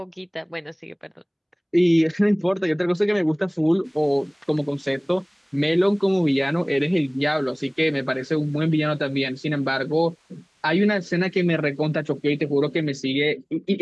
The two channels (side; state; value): both; identical; correlation 1.00